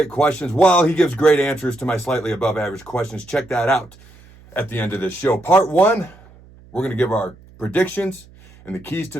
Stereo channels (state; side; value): noise; right; hum, 25 dB below the sound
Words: questions. Well, he gives great answers to my slightly above average questions. Check that out at the end of this show. Part 1, we're going to give our predictions and the keys to